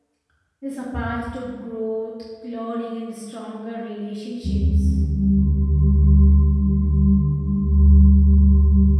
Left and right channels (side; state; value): both; identical; correlation 1.00